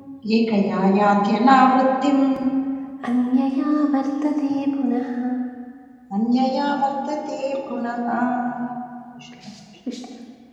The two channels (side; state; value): both; identical; correlation 1.00